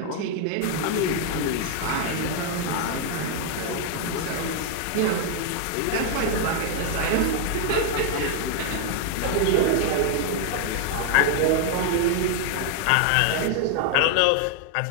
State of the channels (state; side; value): different; both; correlation 0.00